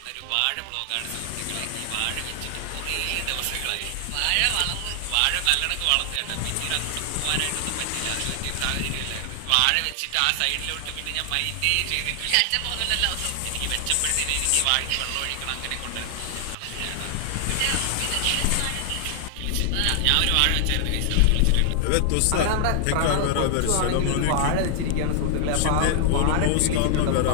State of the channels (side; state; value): both; different; correlation 0.00